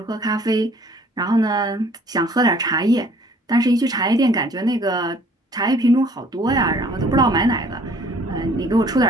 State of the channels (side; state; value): both; normal; correlation 0.56